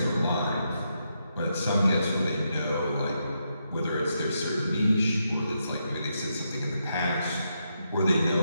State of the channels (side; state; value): both; inverted; correlation -0.82